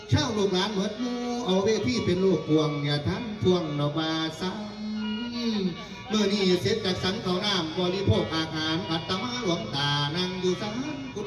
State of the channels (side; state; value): both; identical; correlation 1.00